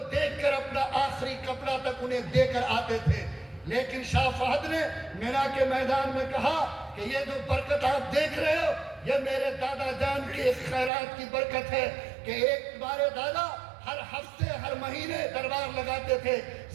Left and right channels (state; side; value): drops out; left; at 10.9 s